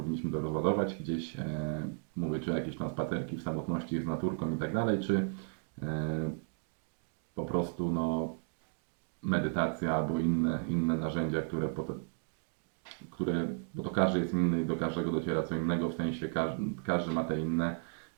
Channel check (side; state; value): left; silent; 55 dB below the other